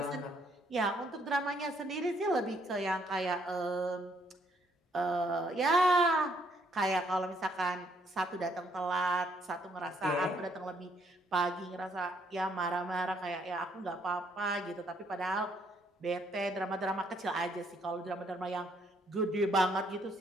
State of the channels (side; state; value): both; normal; correlation 0.69